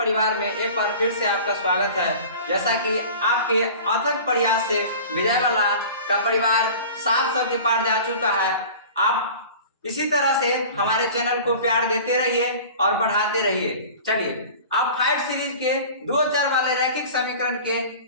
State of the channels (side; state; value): both; inverted; correlation -0.40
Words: में एक बार फिर से आपका स्वागत है। जैसा कि आपके अथक प्रयास से विजय वाला का परिवार 700 के पार जा चुका है। आप इसी तरह से हमारे चैनल को प्यार देते रहिए और बढ़ाते रहिए। चलिए अब फाइव सीरीज के 2 चर वाले रैखिक समीकरण के